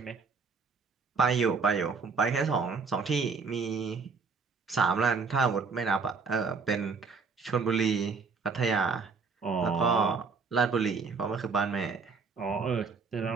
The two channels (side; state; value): left; quieter; 4.9 dB